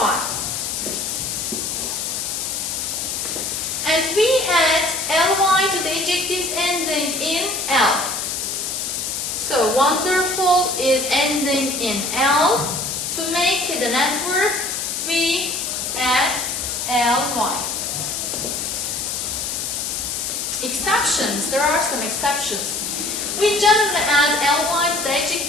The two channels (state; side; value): noise; left; hiss, 2 dB below the sound